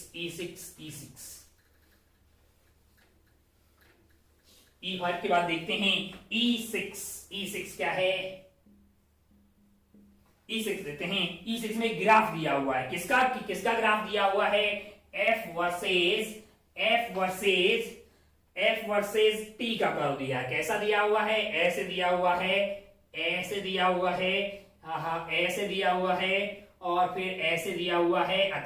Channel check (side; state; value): both; identical; correlation 1.00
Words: E5 के बाद देखते हैं E6 क्या है। E6 देखते हैं। E6 में ग्राफ दिया हुआ है, किसका ग्राफ दिया हुआ है, F वर्सेस T का कर्व दिया है। कैसा दिया हुआ है, ऐसे दिया हुआ है, ऐसे दिया हुआ है, ऐसे दिया हुआ है, और फिर ऐसे दिया हुआ है।